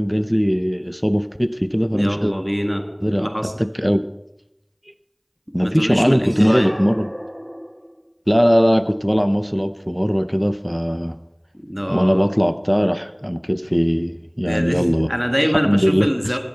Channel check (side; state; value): both; identical; correlation 1.00